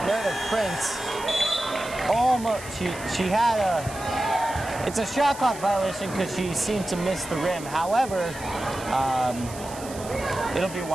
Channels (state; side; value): noise; right; hiss, 15 dB below the sound